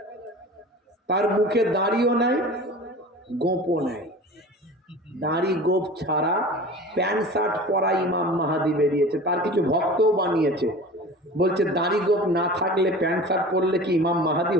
তার মুখে দাড়িও নাই, গোপও নাই, দাড়ি গোপ ছাড়া প্যান্ট শার্ট পরা ইমাম মাহাদি বেরিয়েছে। তার কিছু ভক্তও বানিয়েছে, বলছে দাড়ি গোপ না থাকলে প্যান্ট শার্ট পরলে কি ইমাম মাহাদি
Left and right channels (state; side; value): normal; both; correlation 0.38